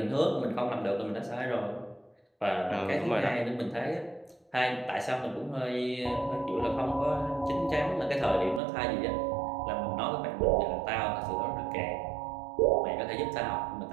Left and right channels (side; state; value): left; drops out; at 8.6 s